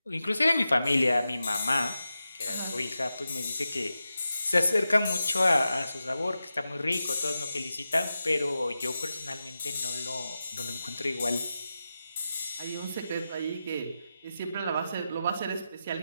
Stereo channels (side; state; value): both; inverted; correlation -0.91